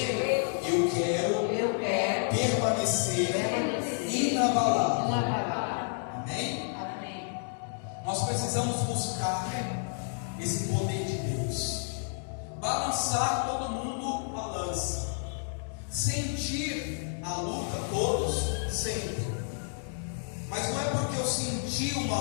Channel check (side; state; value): right; silent; 58 dB below the other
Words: eu quero permanecer inabalável. Amém? Amém. Nós precisamos buscar esse poder de Deus, balançar, todo mundo balança, sentir a luta, todos sentem, mas não é porque eu senti